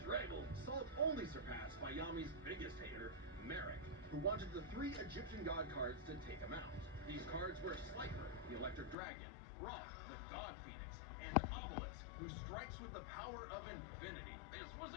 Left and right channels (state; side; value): drops out; right; at 9.0 s